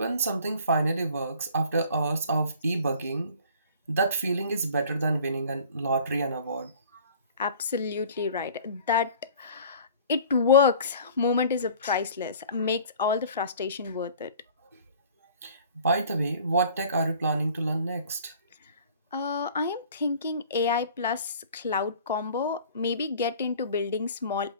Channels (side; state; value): both; inverted; correlation -0.48